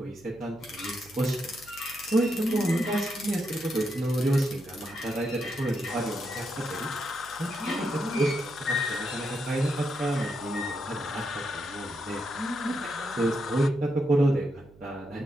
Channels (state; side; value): noise; right; hum, 23 dB below the sound